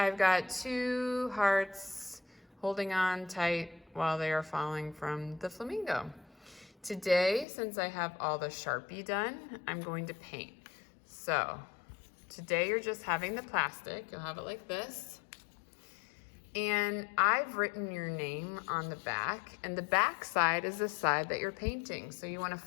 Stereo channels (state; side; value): drops out; right; at 7.5 s